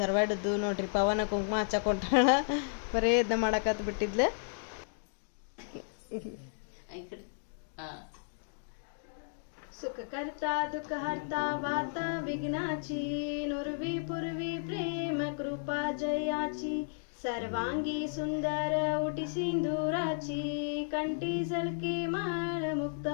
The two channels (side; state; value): right; silent; digital silence